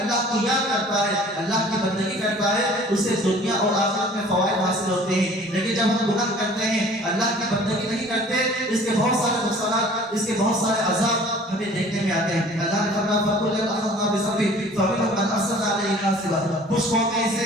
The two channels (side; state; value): both; normal; correlation 0.49